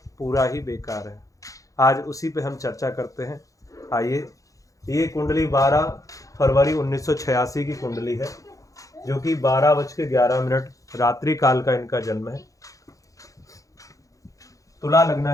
पूरा ही बेकार है। आज उसी पे हम चर्चा करते हैं। आइए, ये कुंडली 12 फरवरी 1986 की कुंडली है जो कि 12:11 रात्रि काल का इनका जन्म है। तुला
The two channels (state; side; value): late; right; 0.16 ms